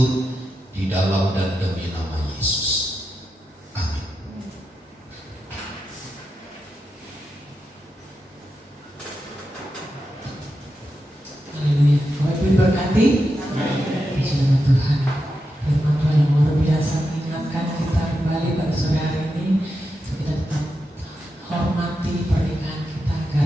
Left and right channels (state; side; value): normal; both; correlation 0.88